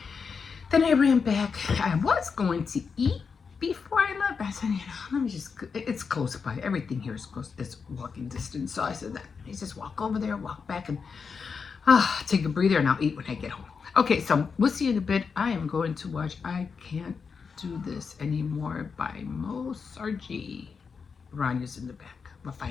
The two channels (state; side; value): quieter; right; 5.6 dB